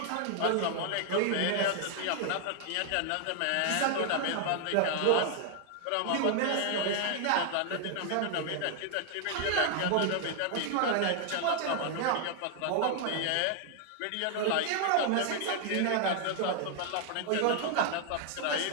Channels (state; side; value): different; both; correlation 0.00